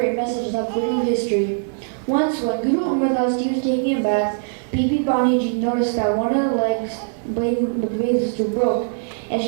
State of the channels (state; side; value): silent; left; digital silence